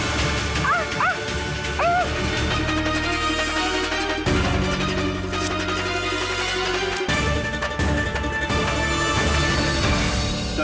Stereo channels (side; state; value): both; identical; correlation 1.00